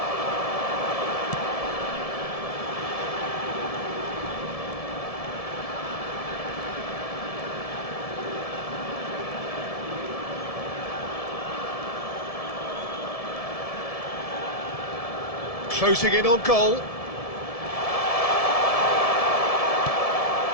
Closing in on goal.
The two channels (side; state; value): right; late; 1.7 ms